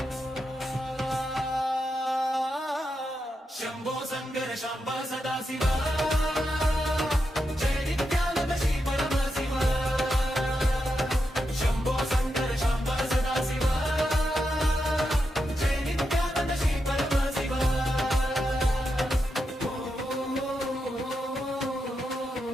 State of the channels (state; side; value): normal; both; correlation 0.86